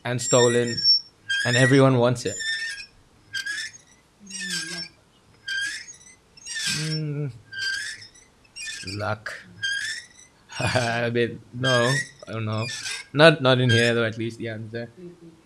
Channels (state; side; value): identical; both; correlation 1.00